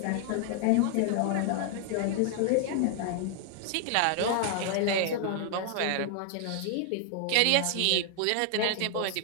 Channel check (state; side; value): different; both; correlation 0.00